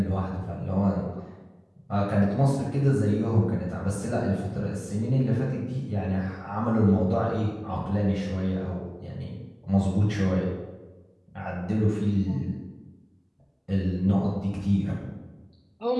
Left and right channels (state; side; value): identical; both; correlation 1.00